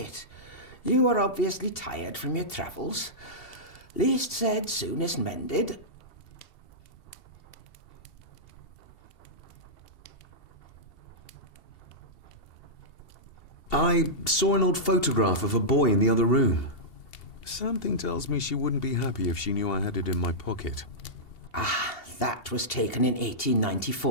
You were obviously tired from your travels. Least said, soonest mended. I saw an old photograph of a boy in the other room. Something tells me she wouldn't be happy if she knew I had it in my pocket. Ah, that was taken in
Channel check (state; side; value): late; right; 2.7 ms